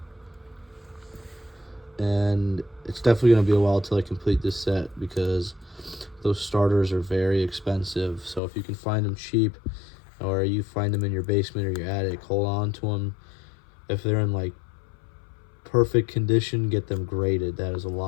And it's definitely going to be a while till I complete this set, because those starters are very expensive. So if you can find them cheap, or you find them in your basement or your attic, hold on to them. If they're in like perfect condition, get them graded. That is a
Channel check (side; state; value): right; drops out; at 8.4 s